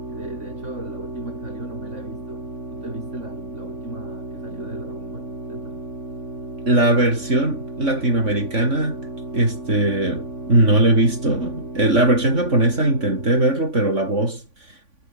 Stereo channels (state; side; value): late; left; 3.5 ms